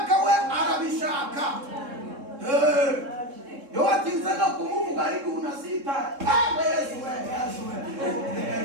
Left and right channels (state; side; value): late; left; 3.7 ms